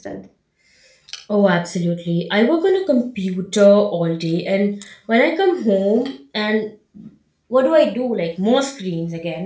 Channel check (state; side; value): identical; both; correlation 1.00